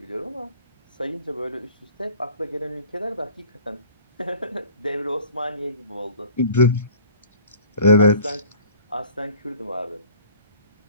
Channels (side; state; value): both; inverted; correlation -0.47